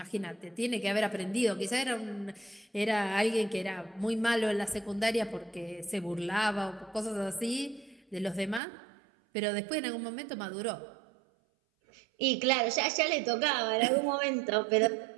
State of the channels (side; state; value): left; drops out; at 8.6 s